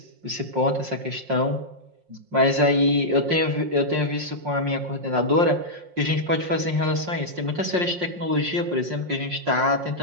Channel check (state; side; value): late; left; 5.6 ms